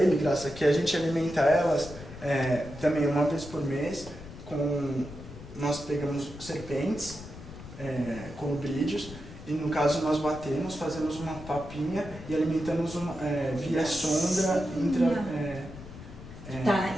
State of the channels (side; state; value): left; noise; rumble, 14 dB below the sound